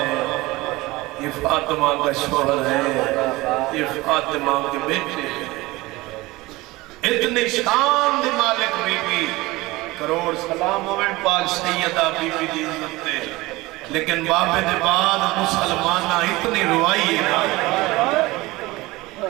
یہ فاطمہ کا شوہر ہے یہ فاطمہ کے بیٹے ہیں اتنے شان دی مالک بی بی کروڑ سلام ہوئے پاک سیدہ بی بی دی عزت دے لیکن بابے دے بعد مسلمانہ اتنی روائی ہے نا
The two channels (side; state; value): left; quieter; 20.6 dB